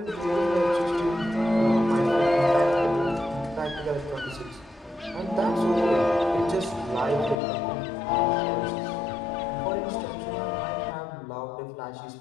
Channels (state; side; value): drops out; right; at 7.4 s